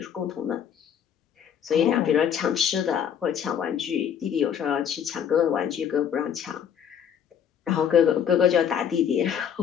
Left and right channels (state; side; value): quieter; right; 8.5 dB